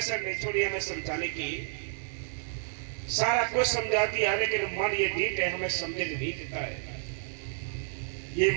नहीं छोड़ी हमें समझाने की, सारा कुछ समझा दिया, लेकिन मन ये ढीठ है, हमें समझने नहीं देता है। ये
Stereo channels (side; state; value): left; silent; 58 dB below the other